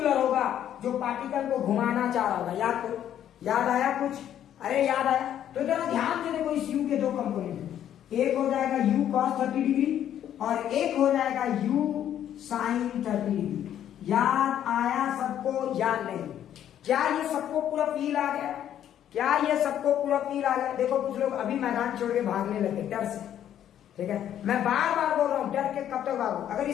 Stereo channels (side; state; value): right; quieter; 10.6 dB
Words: होगा जो पार्टिकल को घुमाना चाह रहा होगा। याद करो, याद आया कुछ? अरे याद आया? तो जरा ध्यान से देखो, इस यू के दो कंपोनेंट, एक हो जाएगा यू कॉस 30 डिग्री और एक हो जाएगा यू साइन 30 डिग्री। याद आया सबको? याद नहीं? क्या ये सबको पूरा फील आ गया? क्या ये सबको पूरा फील आ गया? देखो, कुछ लोग अभी मैदान छोड़ के भागने लगे डर से, ठीक है? मैं बार बार बोल रहा हूं, डर के कब तक भागो? अगर